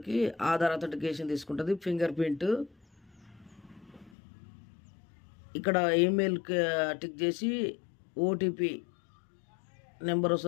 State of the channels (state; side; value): drops out; right; at 4.1 s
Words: ఆధార్ అథెంటికేషన్ తీసుకుంటుంది. ఫింగర్ ప్రింట్ ఇక్కడ ఈమెయిల్ టిక్ చేసి ఓటీపీ నెంబర్